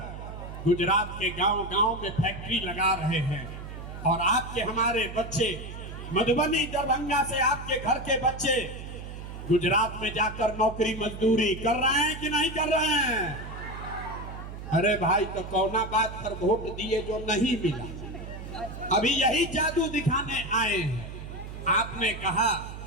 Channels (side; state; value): right; noise; hum, 10 dB below the sound